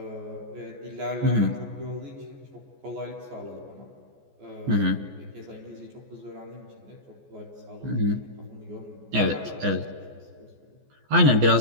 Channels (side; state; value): left; late; 14 ms